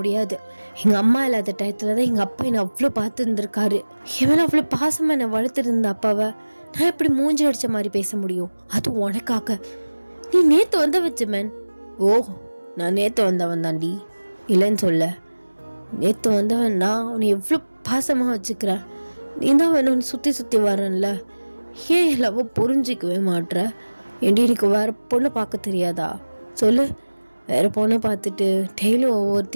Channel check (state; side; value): inverted; both; correlation -1.00